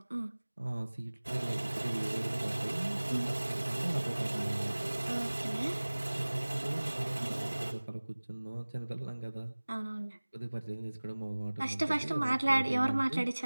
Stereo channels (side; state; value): both; inverted; correlation -1.00